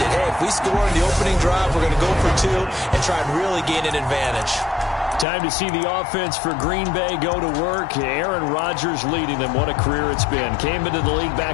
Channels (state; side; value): drops out; right; at 5.2 s